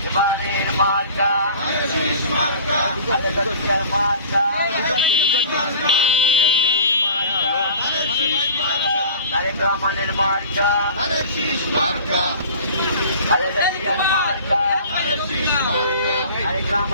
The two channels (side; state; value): both; inverted; correlation -0.43